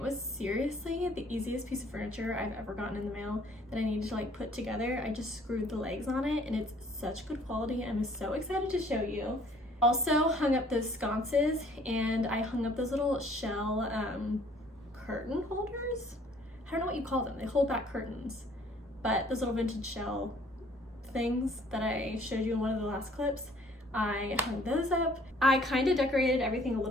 was seriously the easiest piece of furniture I've ever gotten in the mail that I needed to like put together. I just screwed the legs on it and it's such good quality. I'm so excited to show you. Also hung up those sconces and I hung up those little shell curtain holders. I don't know what you call them. They hold back curtains, but those little vintage shell things that I showed you in one of the last clips, I hung those up. I kind of decorated everything a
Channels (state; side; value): normal; both; correlation 0.58